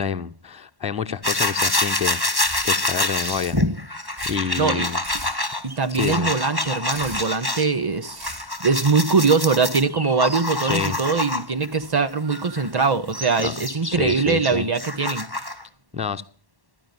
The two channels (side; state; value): left; late; 1.1 ms